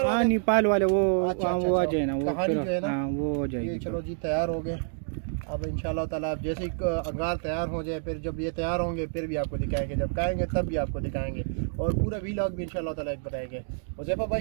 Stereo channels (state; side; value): silent; left; digital silence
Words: हाँ नेपाल वाले वो अच्छा, वो आ जाए ना, वो कहानी जो है ना वो हो जाएगी। चलो जी तैयार हो गए। अब इंशाल्लाह ताला अब जैसे ही अंगार तैयार हो जाए, फिर जब ये तैयार होंगे फिर भी आपको दिखाएंगे, जब खाएंगे तब भी आपको दिखाएंगे और पूरा वीलॉग भी इंशाल्लाह ताला एक बनाएंगे। हुज़ैफा